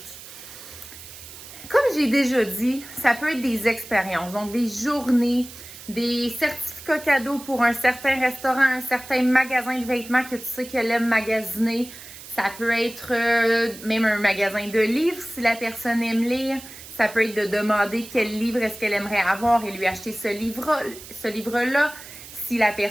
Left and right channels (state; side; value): noise; right; hiss, 16 dB below the sound